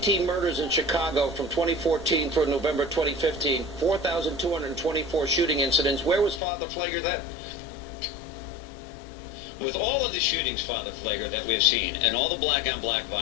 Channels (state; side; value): drops out; right; at 6.4 s